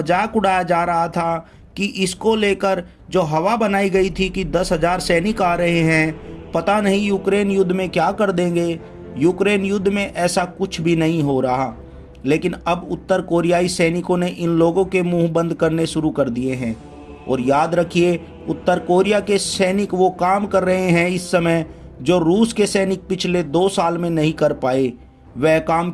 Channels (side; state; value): both; identical; correlation 1.00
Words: उड़ाया जा रहा था कि इसको लेकर जो हवा बनाई गई थी कि 10,000 सैनिक आ रहे हैं, पता नहीं यूक्रेन युद्ध में क्या कर देंगे। यूक्रेन युद्ध में ऐसा कुछ भी नहीं हो रहा, लेकिन अब उत्तर कोरियाई सैनिकों ने इन लोगों के मुंह बंद करने शुरू कर दिए हैं। और याद रखिए, उत्तर कोरिया के सैनिक वो काम कर रहे हैं इस समय जो रूस के सैनिक पिछले 2 साल में नहीं कर पाए। वह काम